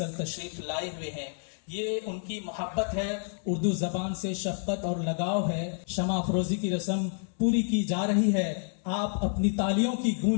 تشریف لائے ہوئے ہیں۔ یہ ان کی محبت ہے، اردو زبان سے شفقت اور لگاؤ ہے۔ شمع افروزی کی رسم پوری کی جا رہی ہے۔ آپ اپنی تالیوں کی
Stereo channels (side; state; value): right; silent; 58 dB below the other